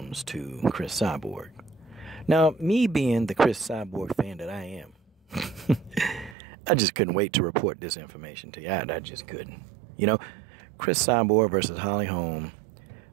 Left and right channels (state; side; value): drops out; left; at 6.4 s